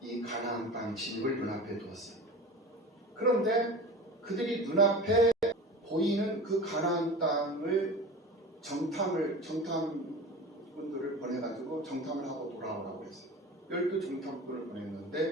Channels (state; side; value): normal; both; correlation 0.34